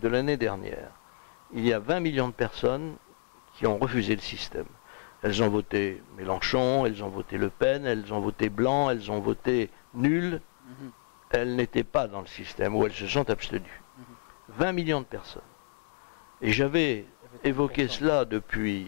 de l'année dernière. Il y a 20 millions de personnes qui ont refusé le système. Elles ont voté Mélenchon, elles ont voté Le Pen, elles ont voté Blanc, elles ont voté nul. Elles n'étaient pas dans le système, ou elles se sont abstenues. 20 millions de personnes. Et j'avais évoqué cela depuis...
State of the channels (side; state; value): right; silent; digital silence